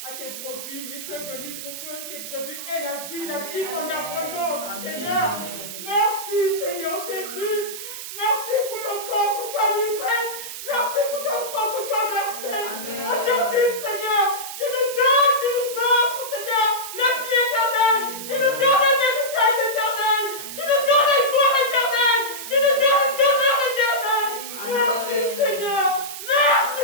à tes brebis. Et tu es venu pour que tes brebis aient la vie en abondance, Seigneur. Merci Seigneur Jésus. Merci pour ton corps que tu as livré. Merci pour ton sang que tu as versé. Aujourd'hui, Seigneur, tu nous donnes, tu nous offres, Seigneur, la vie éternelle. Tu nous donnes un héritage éternel. Tu nous donnes une gloire éternelle. Tu nous donnes une demeure éternelle. Merci, Seigneur.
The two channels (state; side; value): noise; right; hiss, 9 dB below the sound